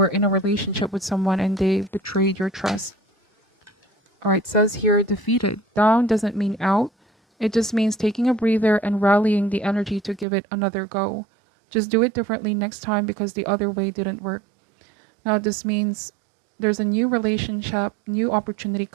in a relationship with someone and they betrayed your trust. All right, it says here, defeated. Down doesn't mean out. It just means taking a breather and rallying the energy to give it another go. Just do it differently next time because the other way didn't work. Now, this means there's a new relationship, new opportunity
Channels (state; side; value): drops out; left; at 10.2 s